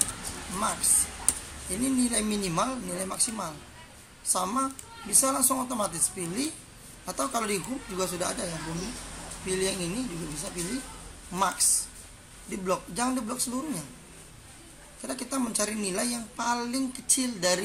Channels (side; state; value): both; identical; correlation 1.00